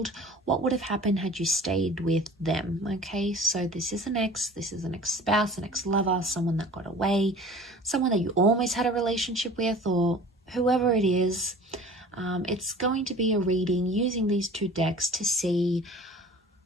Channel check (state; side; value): normal; both; correlation 0.42